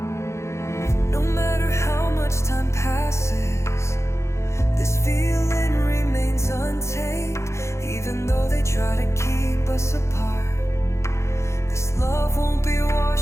No matter how much time passes, this feeling remains untamed. Even though they try to keep us apart, this love won't be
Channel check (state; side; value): late; right; 0.14 ms